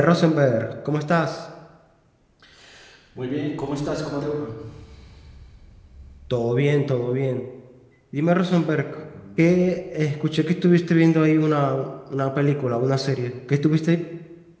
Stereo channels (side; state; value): both; identical; correlation 1.00